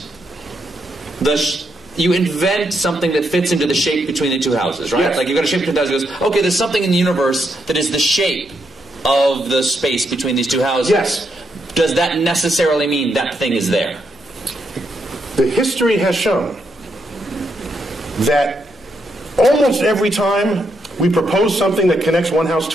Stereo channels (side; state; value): both; normal; correlation 0.80